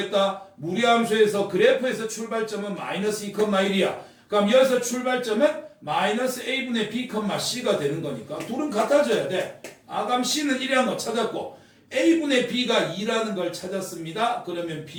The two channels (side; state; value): both; identical; correlation 1.00